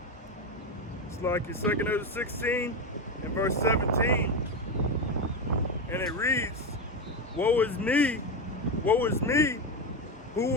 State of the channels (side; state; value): both; normal; correlation 0.13